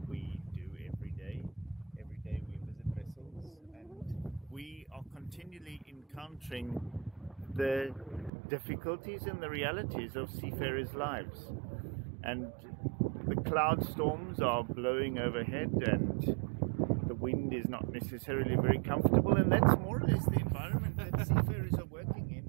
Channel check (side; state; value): left; drops out; at 8.3 s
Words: we do every day. Every day we visit vessels and we are continually encountering the difficulties and the realities of seafarers' lives. And the cloud storms are blowing overhead and the wind is not necessarily very comfortable, and that's more or less the environment that seafarers are working in